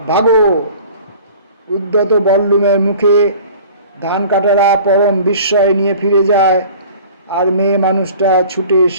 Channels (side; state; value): both; inverted; correlation -0.46